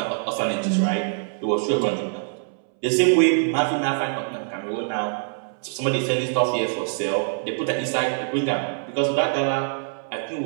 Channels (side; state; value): left; silent; 63 dB below the other